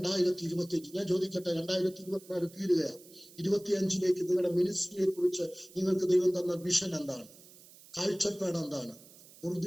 ഞാൻ ചോദിക്കട്ടെ, 2024 തീരുകയാണ്. 25ലേക്ക് നിങ്ങളുടെ മിനിസ്ട്രിയെ കുറിച്ച് നിങ്ങൾക്ക് ദൈവം തന്ന വിഷൻ എന്താണ്? കാഴ്ചപ്പാട് എന്താണ്?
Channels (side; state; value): right; noise; hiss, 22 dB below the sound